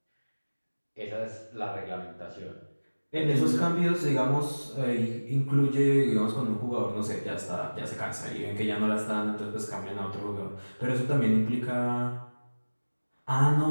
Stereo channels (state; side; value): inverted; both; correlation -1.00